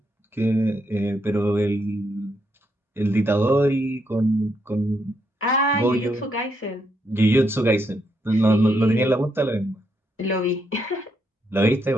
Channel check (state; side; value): normal; both; correlation 0.78